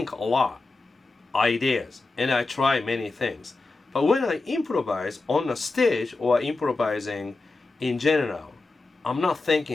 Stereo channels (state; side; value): quieter; right; 3.5 dB